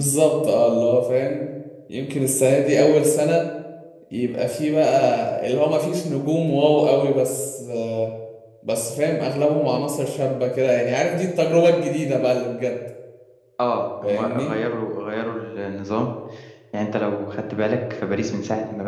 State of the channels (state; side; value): identical; both; correlation 1.00